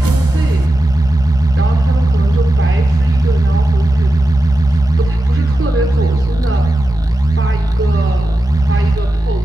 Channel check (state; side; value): normal; both; correlation 0.92